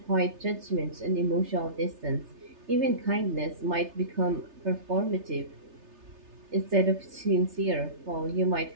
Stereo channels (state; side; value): late; left; 3.3 ms